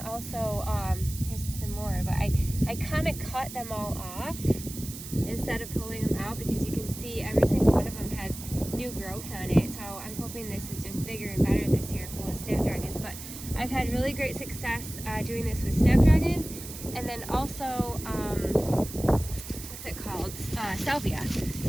here's some more, but I kind of cut them all off instead of pulling them out, because you can see every single one of them has new growth on it. So I'm hoping this is just bigger and better this year, full of snapdragons. But I've had really great success doing this with snapdragons. And then also, what's it called? Salvia.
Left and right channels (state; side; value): noise; right; hiss, 11 dB below the sound